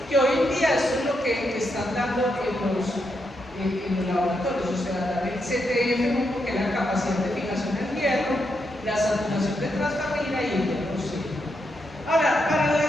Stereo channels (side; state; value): both; normal; correlation 0.81